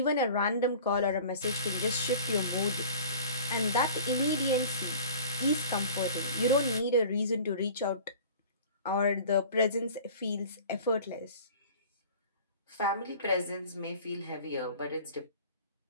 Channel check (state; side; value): inverted; both; correlation -0.43